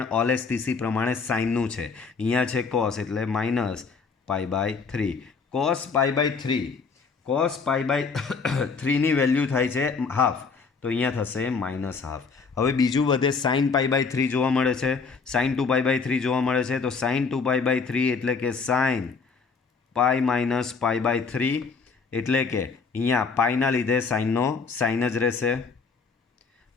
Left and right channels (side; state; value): right; quieter; 5.0 dB